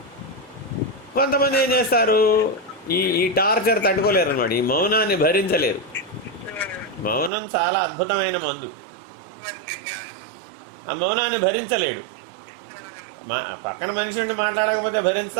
కొంతమంది ఏం చేస్తారు? ఈ టార్చర్ తట్టుకోలేరు అన్నమాట, ఈ మౌనాన్ని భరించలేరు. మౌనం చాలా అద్భుతమైన మందు. ఆ మౌనాన్ని భరించలేడు. పక్కన మనిషి ఉండి మాట్లాడకపోతే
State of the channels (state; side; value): drops out; left; at 7.3 s